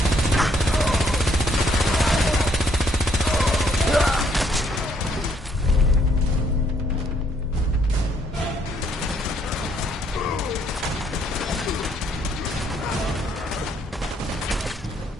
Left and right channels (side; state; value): both; normal; correlation 0.68